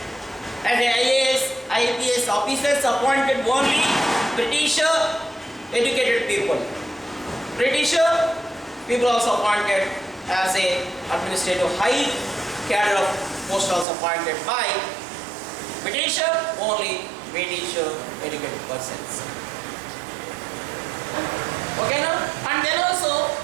And the IAS officers appointed only British educated people. British people also appointed as a administrative high cadre of post also appointed by British, only British educated persons. Okay, now, and then also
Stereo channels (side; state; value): left; drops out; at 13.9 s